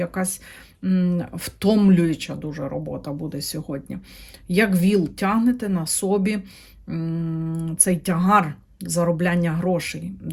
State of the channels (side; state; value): both; identical; correlation 1.00